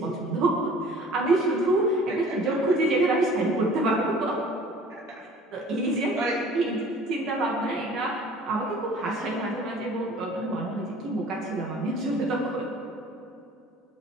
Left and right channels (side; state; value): both; normal; correlation 0.48